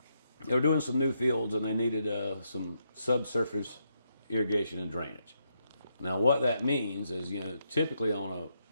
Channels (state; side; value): inverted; both; correlation -0.80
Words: were doing some new fields, and they needed some subsurface irrigation and drainage. Now, what that means is, typically on a